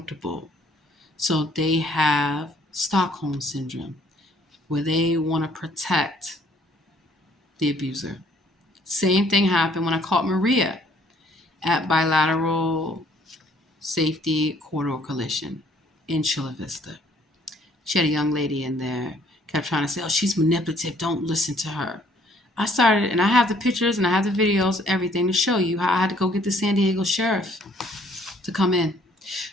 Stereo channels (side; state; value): both; normal; correlation 0.62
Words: So they have Stockholm syndrome, where they want to protect the abuser. Same thing happened when I caught Maria at Bilateral Safety Corridor Collision in Chula Vista. She had a young lady in there, kept trying to say, oh, she's manipulative, don't listen to her. I started, and I have the pictures and I have the videos, everything to show you how I had to go get the San Diego sheriff to come in.